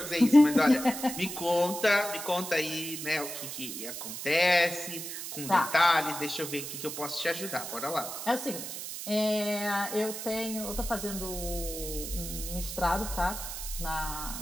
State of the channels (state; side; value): noise; right; hiss, 7 dB below the sound